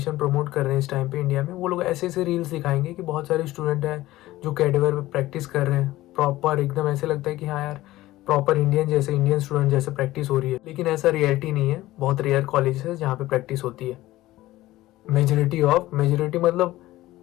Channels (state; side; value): quieter; right; 16.7 dB